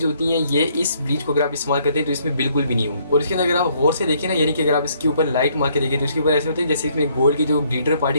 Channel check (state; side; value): inverted; both; correlation -0.67